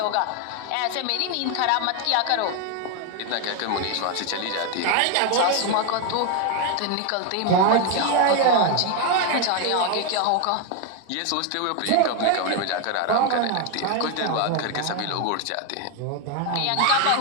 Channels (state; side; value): different; both; correlation 0.01